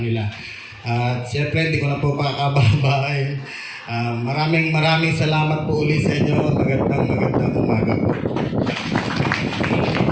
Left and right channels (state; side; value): identical; both; correlation 1.00